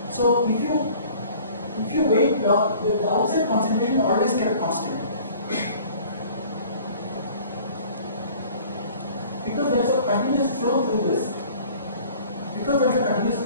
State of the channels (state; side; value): inverted; both; correlation -0.49